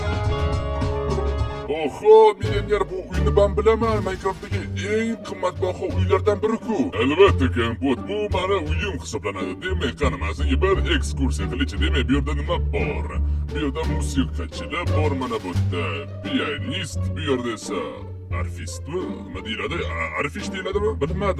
Millioner, bu uyni ben bilaman. Minecraft'dagi eng qimmatbaho uylardan biri-ku. Albatta, Kompot, bu meni uyim hisoblanadi. Demak, qani, men senga bir ekskursiya qilishchi. Demak, bu yerda nima bor? Bu yerda musiqachilar bor, mana bu yerda pianist, bu yerda esa arfistmi? Nima deyiladi? Arfish deyiladimi?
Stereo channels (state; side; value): identical; both; correlation 1.00